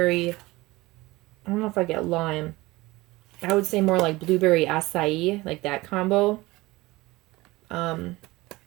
I don't know if I get lime. I would say more like blueberry acai, like that combo. And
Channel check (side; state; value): left; quieter; 20.5 dB